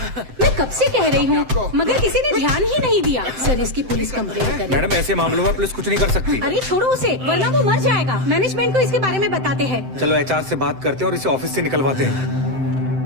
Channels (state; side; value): late; left; 7.8 ms